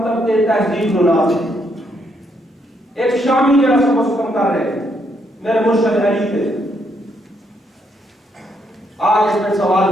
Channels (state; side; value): normal; both; correlation 0.75